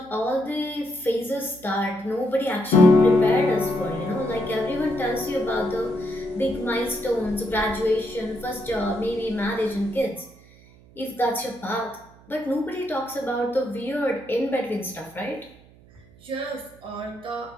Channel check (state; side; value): noise; right; hum, 25 dB below the sound